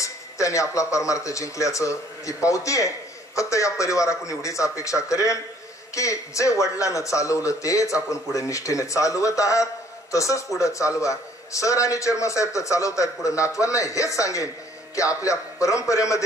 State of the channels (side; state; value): both; normal; correlation 0.60